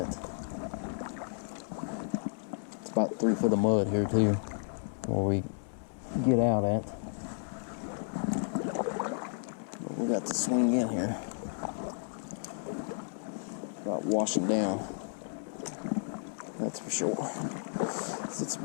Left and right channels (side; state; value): right; silent; 56 dB below the other